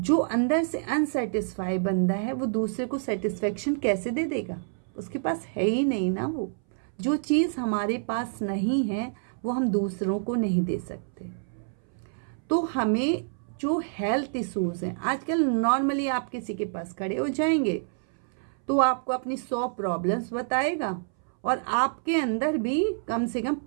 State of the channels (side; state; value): left; silent; 60 dB below the other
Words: अंदर से अनसेटिस्फाई बंदा है वो दूसरे को सेटिस्फेक्शन कैसे दे देगा, उसके पास है ही नहीं ना। वो जो चीज़ हमारे पास नहीं है वो हम दूसरों को नहीं दे सकते। तो हमें जो हेल्थ इश्यूज़ हैं आजकल, नॉर्मली आप किसी के पास खड़े हो जाएंगे तो आपको अपनी 100 प्रॉब्लम्स बताएगा और आपके अंदर भी कम से कम